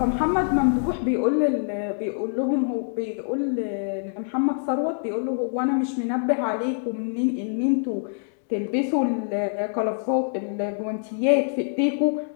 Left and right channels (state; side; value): silent; right; digital silence